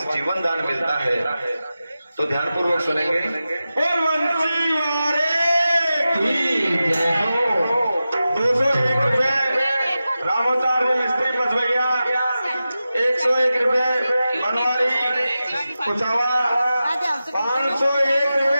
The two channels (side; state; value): both; inverted; correlation -0.93